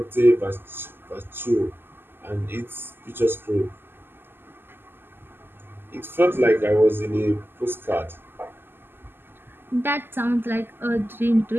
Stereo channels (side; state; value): left; late; 0.10 ms